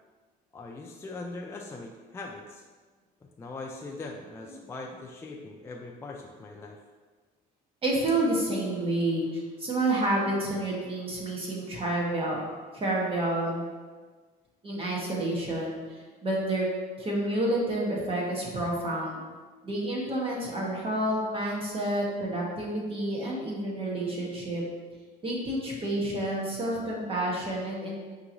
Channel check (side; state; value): both; normal; correlation 0.41